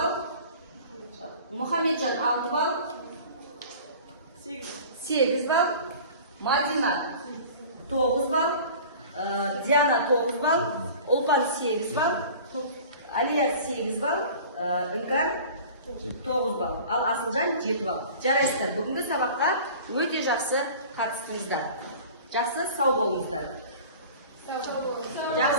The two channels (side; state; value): both; inverted; correlation -0.42